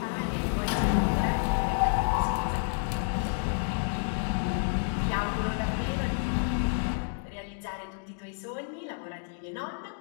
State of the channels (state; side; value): silent; right; 58 dB below the other